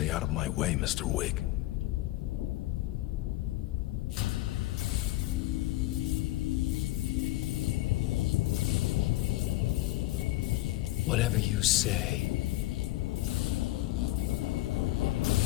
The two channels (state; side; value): quieter; right; 17.3 dB